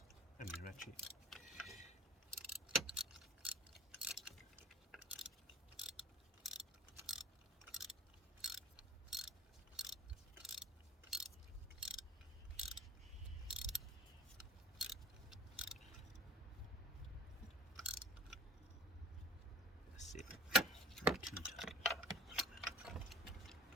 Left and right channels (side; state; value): both; normal; correlation 0.46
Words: and the ratchet. That's it. Not too tight.